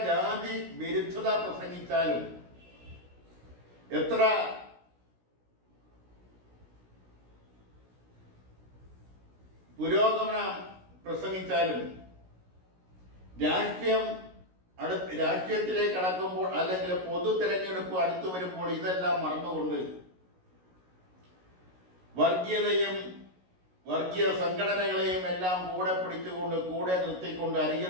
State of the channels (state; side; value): late; left; 16 ms